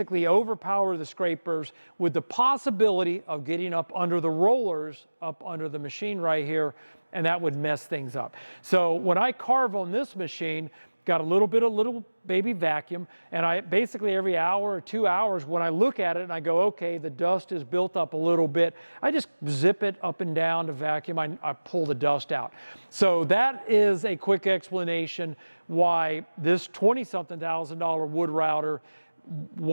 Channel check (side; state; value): both; inverted; correlation -1.00